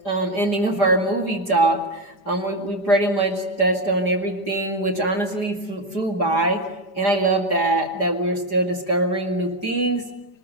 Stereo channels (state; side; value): late; right; 5.0 ms